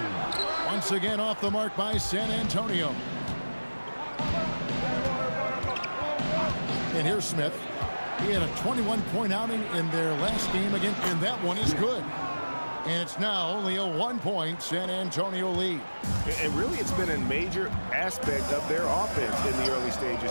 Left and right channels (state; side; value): inverted; both; correlation -1.00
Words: Once again off the mark by San Antonio. And here's Smith. He had a 21-point outing in their last game again, and that one is good. And it's now only a 1-point San Antonio lead. And really, it's been a major aspect of their offense in the early